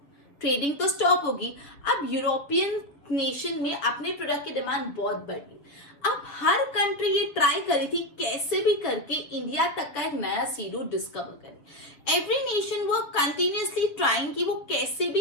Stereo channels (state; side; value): late; right; 6.7 ms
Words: ट्रेडिंग तो स्टॉप होगी. अब यूरोपियन नेशन में अपने प्रोडक्ट की डिमांड बहुत बढ़ गई. अब हर कंट्री ये ट्राई करी थी कैसे भी करके इंडिया तक का एक नया सी रूट डिस्कवर करे. एवरी नेशन वो कंटिन्यूअसली ट्राइंग कि वो कैसे